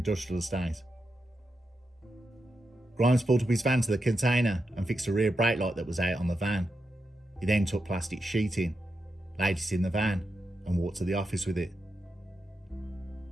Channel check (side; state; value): both; normal; correlation 0.86